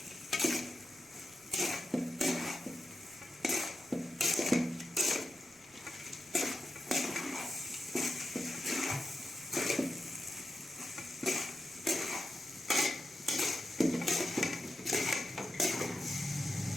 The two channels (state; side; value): noise; right; rumble, 30 dB below the sound